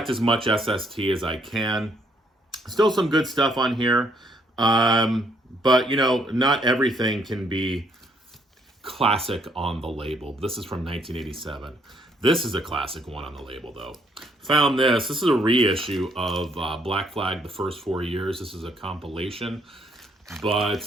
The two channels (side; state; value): both; normal; correlation 0.68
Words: as much SST as I can. Still some good stuff on here. But, not everything can be classic on the label. This is from 1987. This is a classic one on the label, though. Found this. This is a reissue of Black Flag, the first 4 years. This is a compilation.